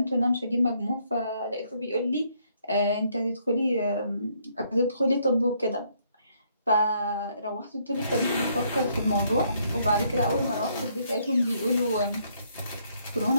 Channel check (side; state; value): both; inverted; correlation -0.70